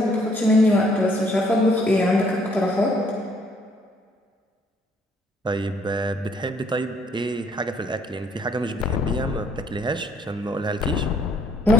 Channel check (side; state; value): both; normal; correlation 0.65